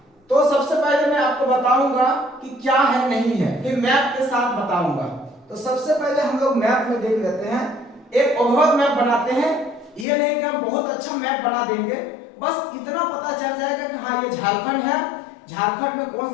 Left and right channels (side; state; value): right; drops out; at 10.1 s